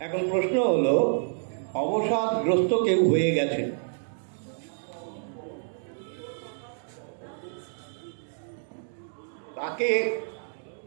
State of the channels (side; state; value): left; silent; digital silence